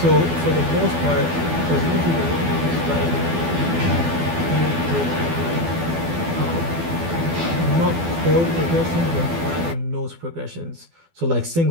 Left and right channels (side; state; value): left; late; 12 ms